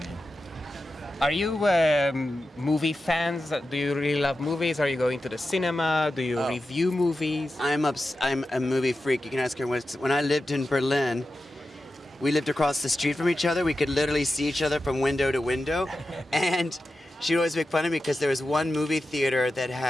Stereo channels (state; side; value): normal; both; correlation 0.92